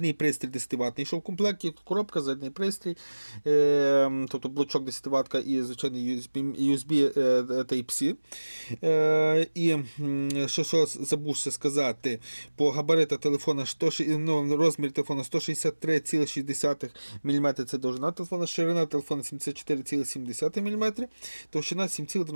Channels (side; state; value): both; inverted; correlation -1.00